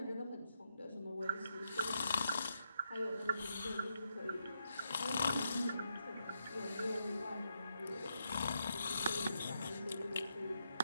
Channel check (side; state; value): both; inverted; correlation -0.82